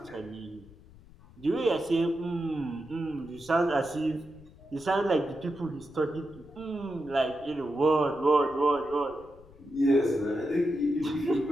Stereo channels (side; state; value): left; noise; rumble, 23 dB below the sound